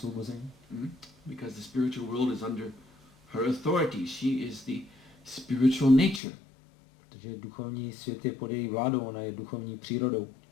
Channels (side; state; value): right; drops out; at 6.2 s